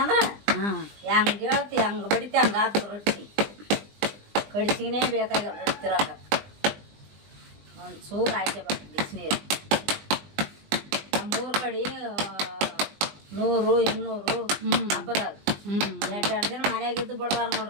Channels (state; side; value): late; left; 20 ms